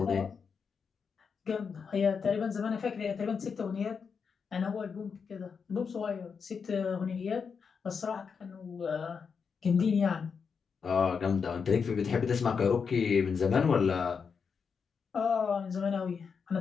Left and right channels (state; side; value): quieter; right; 5.9 dB